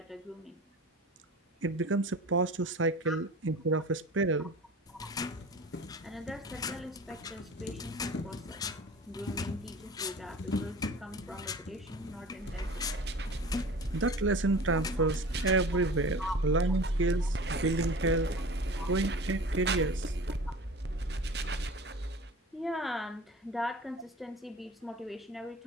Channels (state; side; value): normal; both; correlation 0.39